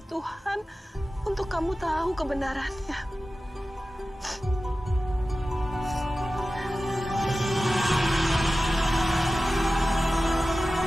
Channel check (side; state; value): both; normal; correlation 0.95